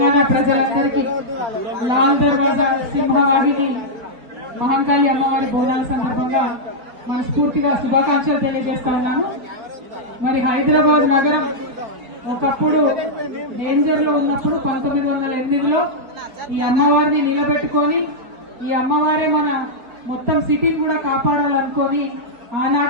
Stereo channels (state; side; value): late; left; 4.6 ms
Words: ప్రజలందరికీ లాల్ దర్వాజా సింహవాహిని మహంకాళి అమ్మవారి బోనాల సందర్భంగా మనస్ఫూర్తిగా శుభాకాంక్షలు తెలియజేస్తా ఉన్నాము. మరి హైదరాబాద్ నగరం ఒకప్పుడు డేంజర్ లో ఉన్నప్పుడు 1908లో ఈ అమ్మవారిని నిలబెట్టుకొని ఈ అమ్మవారే మన మొత్తం సిటీ కూడా కాపాడాలనుకొని